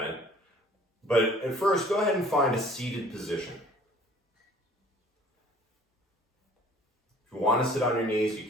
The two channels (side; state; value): both; normal; correlation 0.52